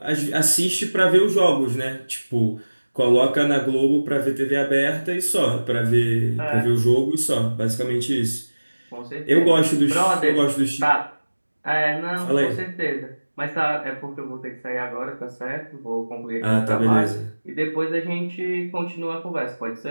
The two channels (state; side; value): inverted; both; correlation -1.00